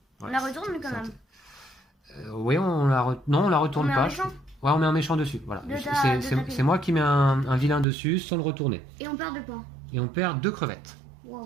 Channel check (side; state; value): left; drops out; at 7.9 s